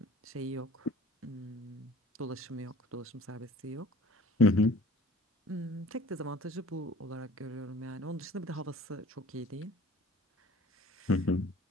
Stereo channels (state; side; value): normal; both; correlation 0.49